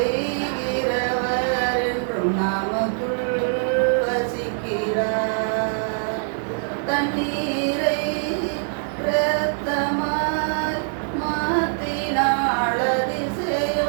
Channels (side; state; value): left; silent; 63 dB below the other